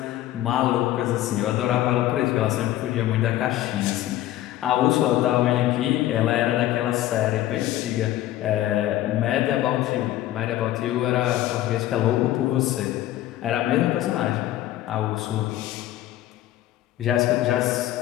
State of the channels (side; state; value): right; quieter; 14.1 dB